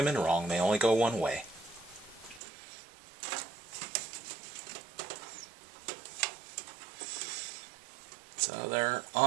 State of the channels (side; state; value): left; drops out; at 2.4 s